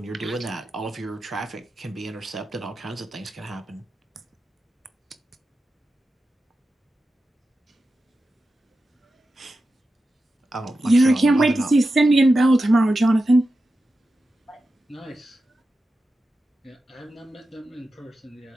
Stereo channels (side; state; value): both; normal; correlation 0.91